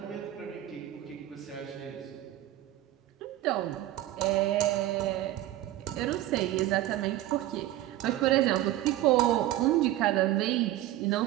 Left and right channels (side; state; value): left; quieter; 14.7 dB